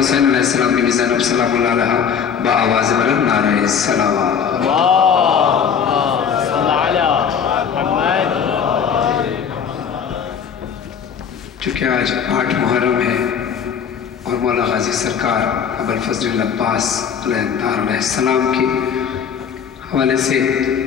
علیہ السلام، بیوی زینب سلام اللہ علیہ، با آواز بلند نعرہ السلام صلی علی محمد۔ چونکہ آج 8 محرم ہے اور مولا غازی سرکار ابوالفضل العباس علیہ السلام کے حوالے سے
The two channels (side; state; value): right; quieter; 7.3 dB